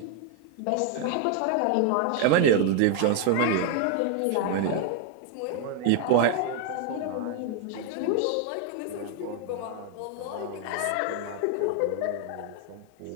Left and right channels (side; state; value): both; different; correlation 0.01